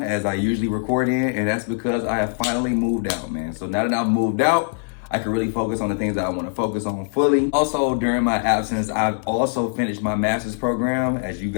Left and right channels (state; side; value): silent; right; 57 dB below the other